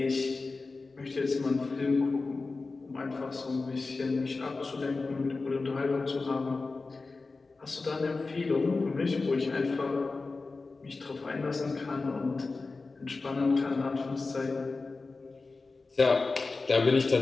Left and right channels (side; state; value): right; quieter; 3.8 dB